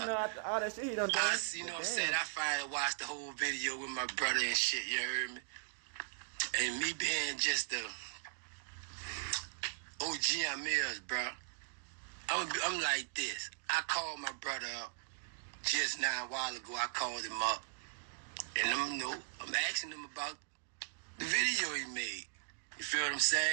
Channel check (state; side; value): silent; left; digital silence